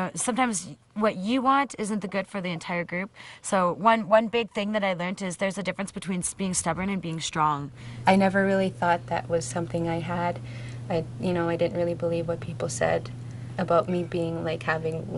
what you want isn't the good for the entire group. So one big thing that I learned is there's a difference between being stubborn and being strong. I never really thought that was something I had. I didn't really believe what people said about me being having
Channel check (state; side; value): identical; both; correlation 1.00